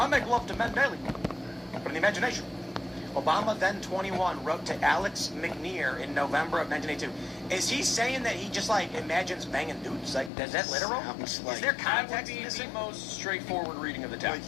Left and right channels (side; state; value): right; drops out; at 10.3 s